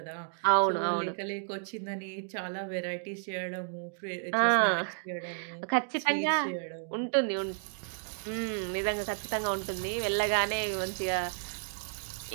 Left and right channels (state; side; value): silent; left; digital silence